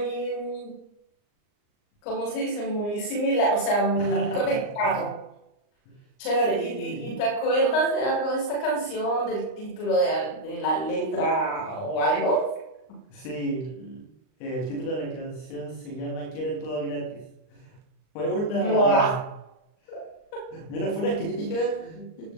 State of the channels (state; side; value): late; right; 39 ms